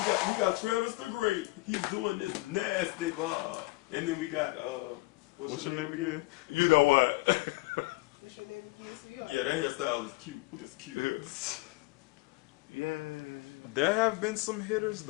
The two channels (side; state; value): right; quieter; 23.1 dB